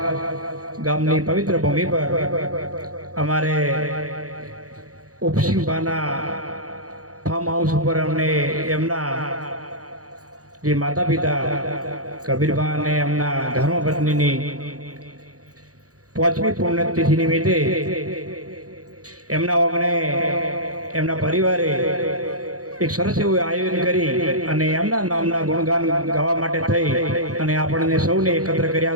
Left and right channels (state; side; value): late; left; 0.66 ms